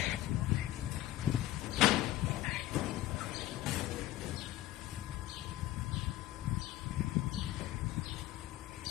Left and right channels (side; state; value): right; quieter; 15.0 dB